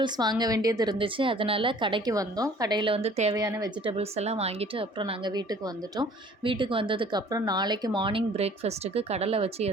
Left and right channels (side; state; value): both; normal; correlation 0.52